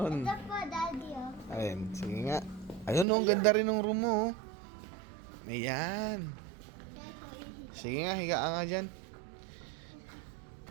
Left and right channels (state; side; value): drops out; left; at 3.1 s